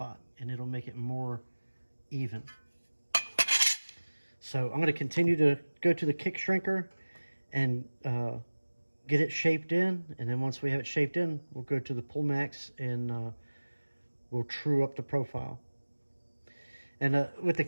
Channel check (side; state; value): both; inverted; correlation -1.00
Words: and it'll make it more even. So I'm going to continue to go to the kick shrinker and get it shaped in, and then once we have it shaped in, we'll go to the pull max and we'll true up the profile. And with the